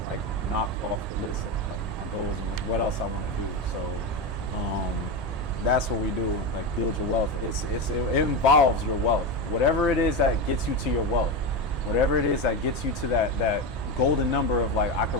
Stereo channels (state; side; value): normal; both; correlation 0.16